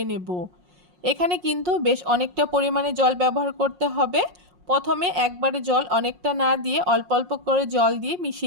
নেব। এখানে কিন্তু বেশ অনেকটা পরিমাণে জল ব্যবহার করতে হবে। প্রথমে একবারে জল অনেকটা না দিয়ে অল্প অল্প করে জল দিয়ে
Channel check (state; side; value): late; left; 5.6 ms